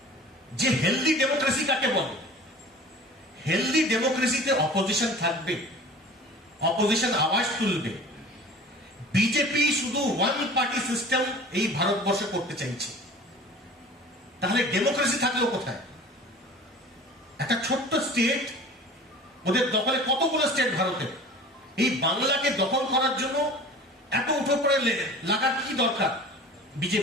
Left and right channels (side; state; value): both; normal; correlation 0.42